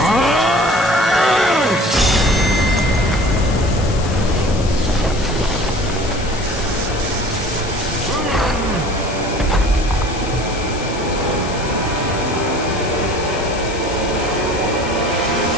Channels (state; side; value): noise; left; hiss, 13 dB below the sound